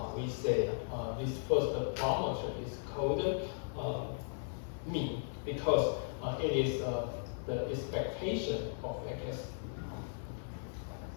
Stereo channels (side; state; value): right; silent; 53 dB below the other